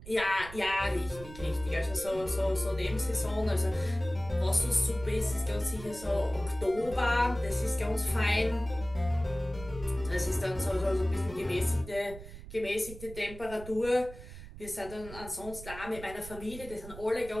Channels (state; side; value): noise; right; rumble, 14 dB below the sound